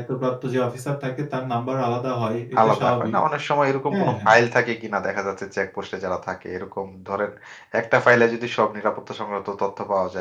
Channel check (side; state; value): both; identical; correlation 1.00